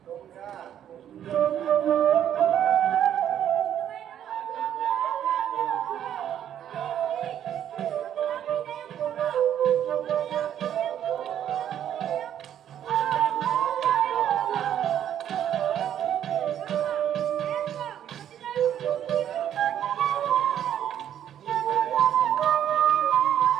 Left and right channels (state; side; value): quieter; left; 10.2 dB